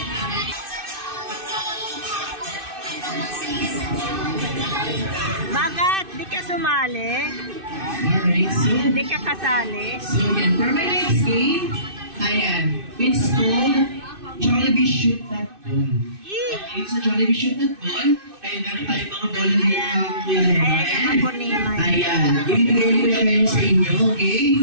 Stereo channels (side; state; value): left; late; 2.6 ms